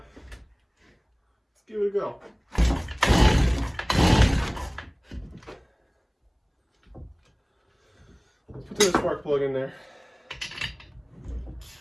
give it a go. Let's put the spark plug in there.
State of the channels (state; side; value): identical; both; correlation 1.00